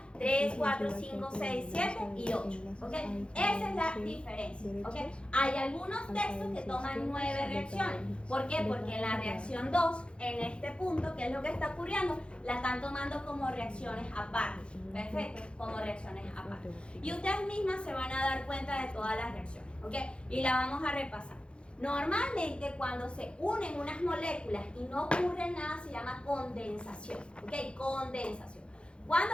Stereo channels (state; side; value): late; right; 0.057 ms